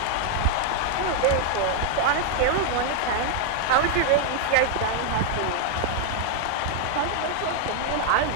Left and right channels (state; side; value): different; both; correlation 0.00